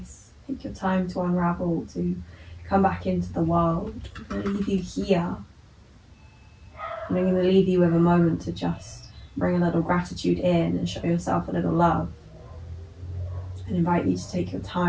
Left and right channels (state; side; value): identical; both; correlation 1.00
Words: Take your time to unravel, to come back into the world. I'm going to leave you here. And I'm going to leave you with a moment to just bring a little gratitude in and show yourself a little love. And invite you to take your